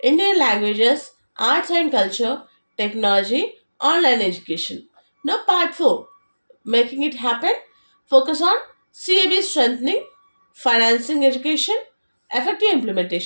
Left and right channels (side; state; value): both; inverted; correlation -1.00